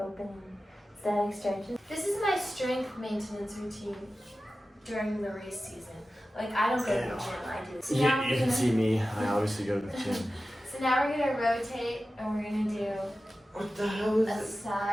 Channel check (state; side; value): normal; both; correlation 0.94